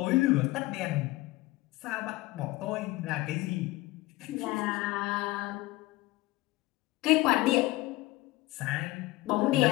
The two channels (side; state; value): right; quieter; 19.6 dB